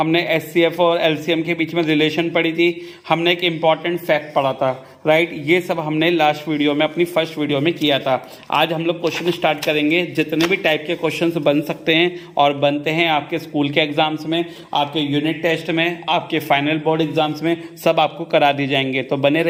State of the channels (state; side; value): identical; both; correlation 1.00